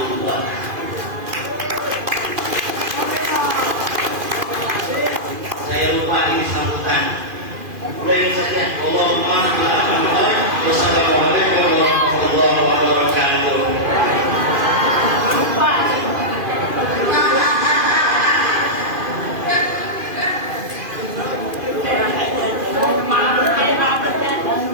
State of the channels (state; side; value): late; left; 2.5 ms